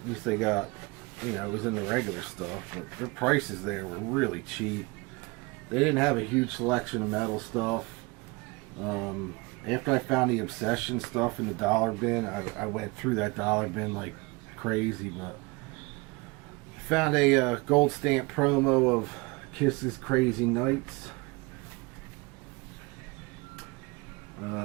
At least they got, you know, it was in the regular stuff. But their prices there were really cheap. They didn't have a huge selection of metal stuff. After I found the Obsession stuff in the dollar bin, I went through that dollar bin like crazy. But I found a gold stamp promo of Kiss's Crazy Nights.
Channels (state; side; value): quieter; left; 26.3 dB